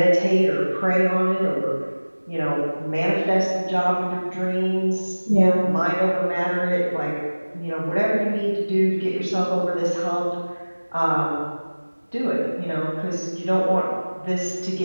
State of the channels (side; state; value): both; inverted; correlation -1.00